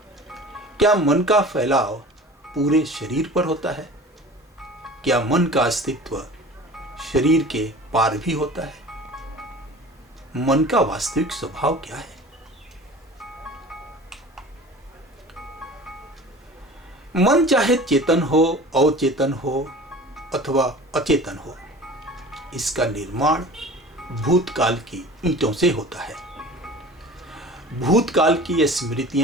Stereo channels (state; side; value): normal; both; correlation 0.41